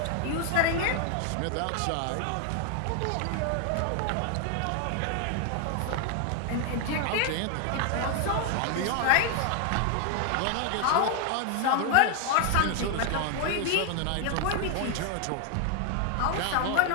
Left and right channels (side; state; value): both; different; correlation 0.00